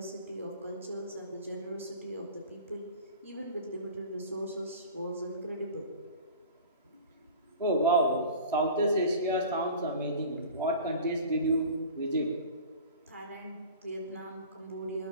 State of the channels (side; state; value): both; inverted; correlation -0.40